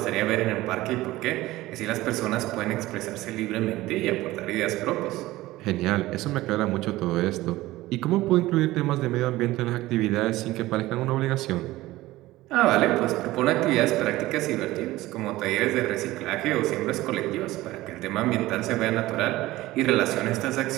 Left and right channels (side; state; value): left; quieter; 17.5 dB